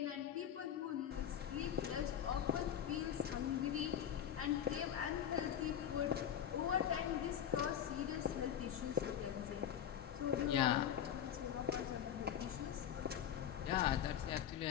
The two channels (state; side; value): quieter; right; 9.6 dB